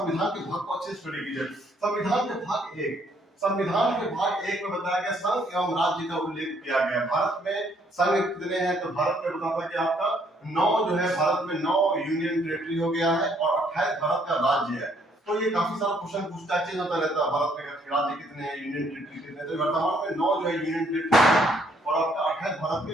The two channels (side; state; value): both; normal; correlation 0.67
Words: के भाग को अच्छे से स्टडी कीजिए। संविधान के भाग एक, संविधान के भाग एक में बताया गया संघ एवं राज्य का उल्लेख किया गया। भारत में संघ कितने हैं? तो भारत में बताता है कि आपका 9 जो है, भारत में 9 यूनियन टेरिटरी हो गया है और 28 भारत का राज्य है। तो ये काफी सारा क्वेश्चन पूछता है, चेंज होता रहता है। भारत में राज्य कितने हैं, यूनियन टेरिटरी कितने हैं? तो वर्तमान में 9 जो है यूनियन टेरिटरी और आपका 28 भारत के